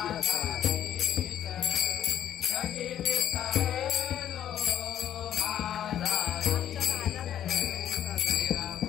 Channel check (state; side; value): quieter; right; 10.7 dB